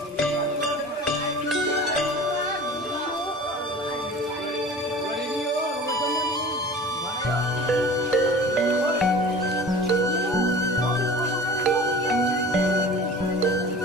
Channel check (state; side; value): normal; both; correlation 0.40